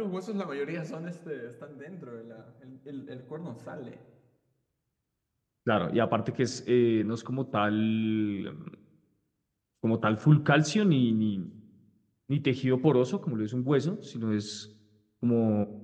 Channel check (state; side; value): identical; both; correlation 1.00